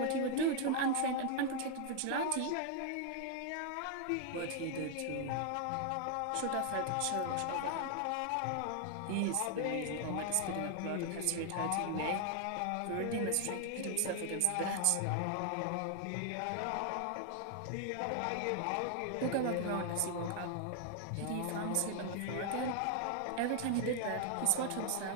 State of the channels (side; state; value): both; different; correlation 0.00